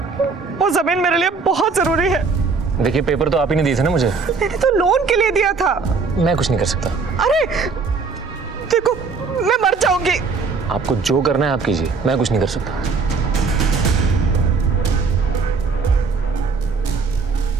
वो जमीन मेरे लिए बहुत जरूरी है। देखिए, पेपर तो आप ही ने दिए थे ना मुझे। मैंने तो लोन के लिए दिया था। मैं कुछ नहीं कर सकता। अरे देखो, मैं मर जाऊंगी। आपको जो करना है आप कीजिए, मैं कुछ नहीं कर सकता।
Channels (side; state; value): left; quieter; 4.7 dB